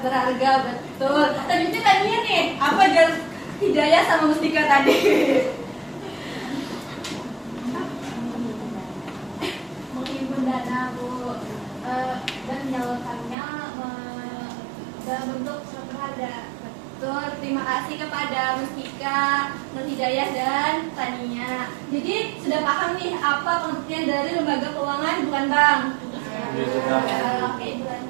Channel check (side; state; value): left; drops out; at 13.4 s